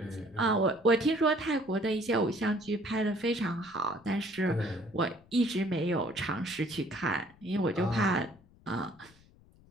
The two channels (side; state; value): left; noise; rumble, 27 dB below the sound